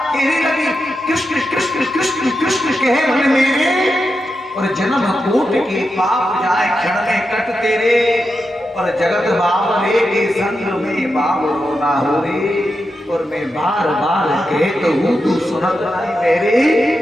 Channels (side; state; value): both; normal; correlation 0.88